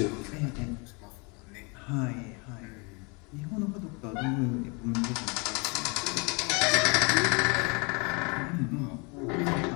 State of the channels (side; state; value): right; quieter; 31.2 dB